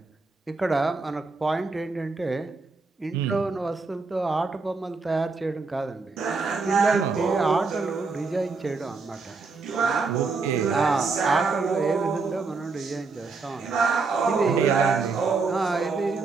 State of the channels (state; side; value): quieter; left; 4.2 dB